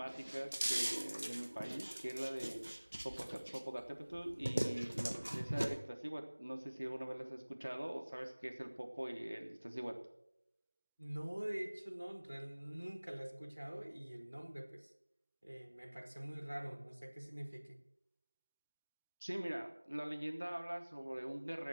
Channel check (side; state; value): both; inverted; correlation -1.00